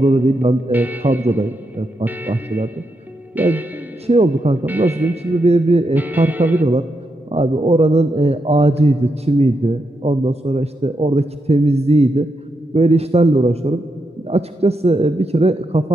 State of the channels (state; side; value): normal; both; correlation 0.83